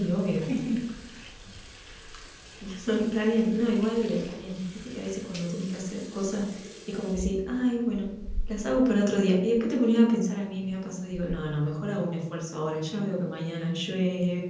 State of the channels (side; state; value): both; identical; correlation 1.00